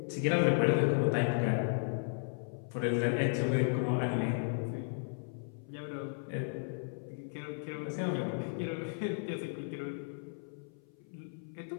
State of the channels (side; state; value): right; silent; 55 dB below the other